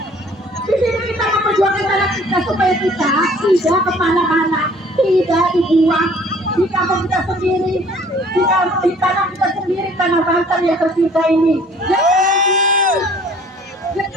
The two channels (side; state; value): both; normal; correlation 0.54